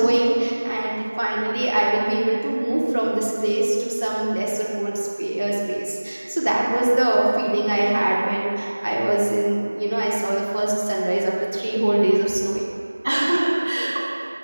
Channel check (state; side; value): inverted; both; correlation -1.00